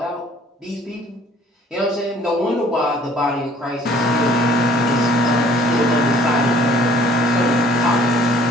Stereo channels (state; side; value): normal; both; correlation 0.56